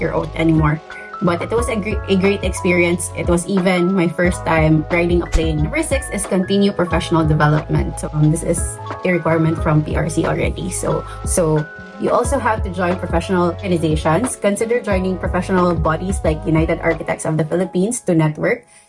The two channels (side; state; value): both; identical; correlation 1.00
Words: oath anymore. But it was a great experience. It was even my first time riding a plane. Number 6 is continue professional development. So this is a requirement from PRC already. So you also have to join professional organizations. Consider joining professional bodies like United Architects of the Philippines to network,